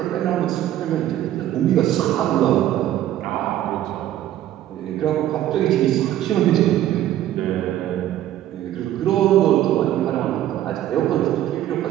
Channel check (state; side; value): quieter; left; 12.6 dB